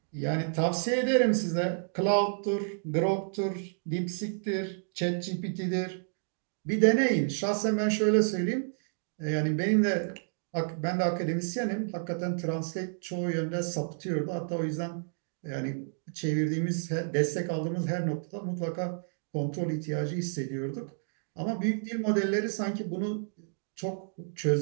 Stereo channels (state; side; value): silent; left; digital silence